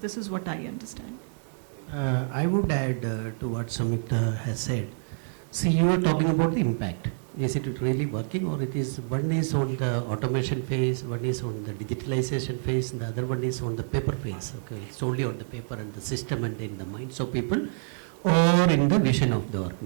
is what I understand. I would add to what Samyukta has said. See, you are talking about the impact. Is it really working, or it is one is on the automation phase, one is on the digitalization phase, and the other one is on the paper phase. Okay, it's only on the paper and the system and in the minds of people, or in the vision of the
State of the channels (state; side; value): silent; left; digital silence